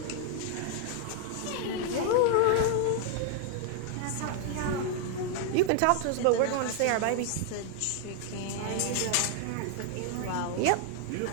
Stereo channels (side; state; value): both; different; correlation 0.00